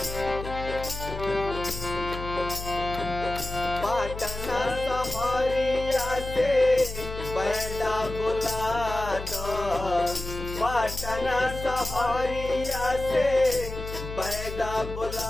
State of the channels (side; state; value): left; noise; hum, 9 dB below the sound